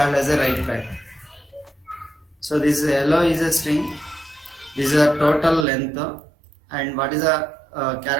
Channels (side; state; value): left; drops out; at 5.7 s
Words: as a right pad. So this hello is a string, this is a total length, and what is a